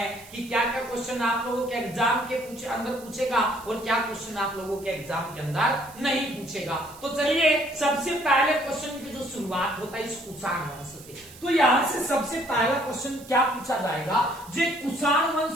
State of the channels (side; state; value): right; noise; hiss, 20 dB below the sound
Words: कि क्या क्या क्वेश्चन आप लोगों के एग्जाम के अंदर पूछेगा और क्या क्वेश्चन आप लोगों के एग्जाम के अंदर नहीं पूछेगा। तो चलिए, सबसे पहले क्वेश्चन की जो शुरुआत होता है इस कुषाण वंश से, तो यहां से सबसे पहला क्वेश्चन क्या पूछा जाएगा? जो कुषाण